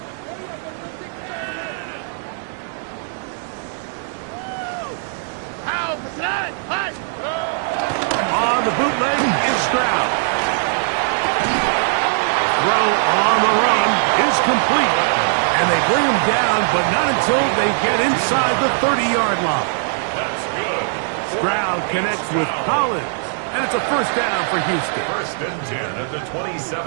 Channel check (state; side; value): silent; left; digital silence